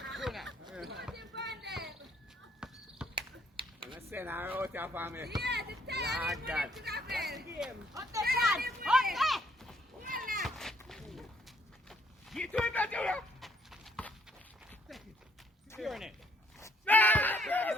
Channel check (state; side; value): normal; both; correlation 0.66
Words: Junior. I'm going to send her out here for me. Yeah, the time is God. Up the front! Up Get to it, Junior. Secure it. Hey,